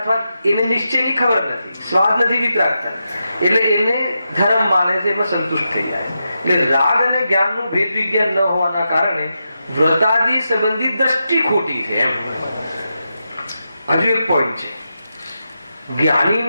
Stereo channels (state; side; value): inverted; both; correlation -0.88